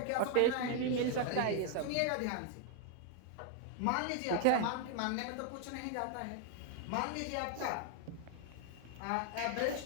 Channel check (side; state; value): both; different; correlation 0.00